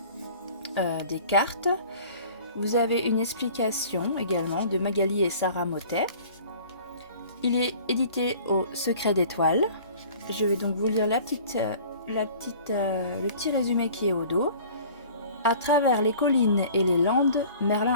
des cartes. Vous avez une explication également de Magali et Sarah Motet. Il est édité au Secret d'étoiles. Je vais donc vous lire le petit résumé qui est au dos. À travers les collines et les landes,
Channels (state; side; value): inverted; both; correlation -0.48